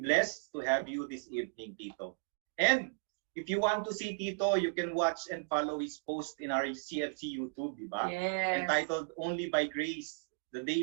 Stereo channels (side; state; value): left; silent; digital silence